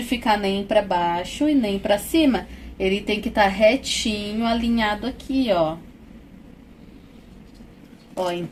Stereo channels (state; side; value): identical; both; correlation 1.00